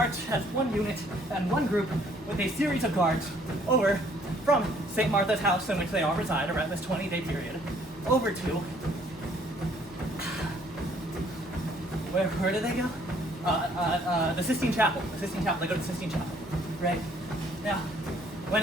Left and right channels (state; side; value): normal; both; correlation 0.62